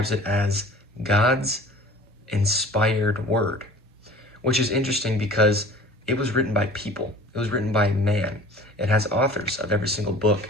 it as God's inspired word, which is interesting because it was written by people. It was written by man. It has authors of every single book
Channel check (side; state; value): both; normal; correlation 0.45